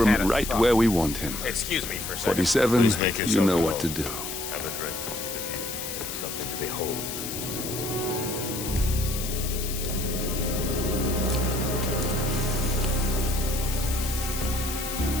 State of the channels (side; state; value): left; noise; hiss, 6 dB below the sound